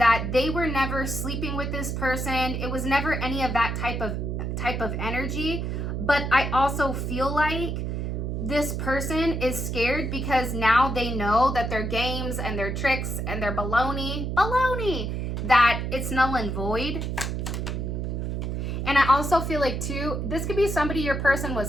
they were never sleeping with this person. It was never any of that type of energy. But I also feel like this person is scared because now they know that their games and their tricks and their baloney, that it's null and void. And I also feel like too, this could be somebody your person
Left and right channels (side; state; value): right; noise; hum, 2 dB below the sound